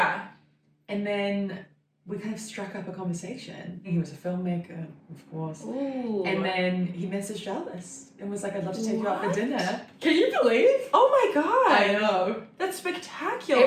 And then we kind of struck up a conversation. He was a filmmaker, of course. Ooh. And then he messaged Alice and was like, I'd love to take you out for What? dinner. Can you believe? Oh my god. I know. That's spectacular.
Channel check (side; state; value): both; identical; correlation 1.00